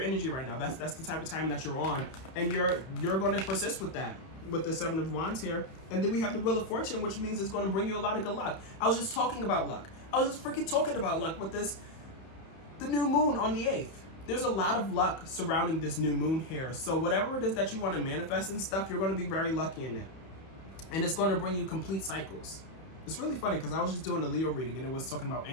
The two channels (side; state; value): right; late; 31 ms